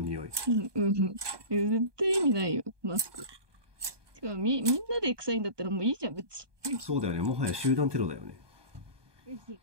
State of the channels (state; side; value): late; left; 1.2 ms